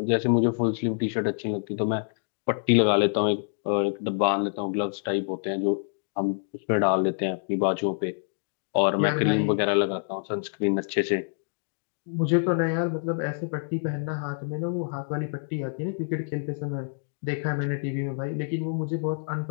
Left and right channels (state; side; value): silent; right; digital silence